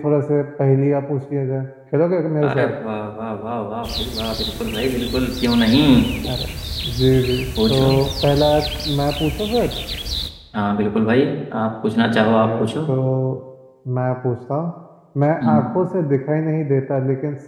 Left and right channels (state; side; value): identical; both; correlation 1.00